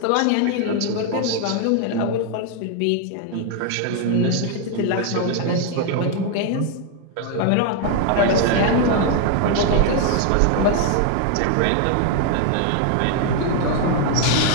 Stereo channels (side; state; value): both; different; correlation 0.00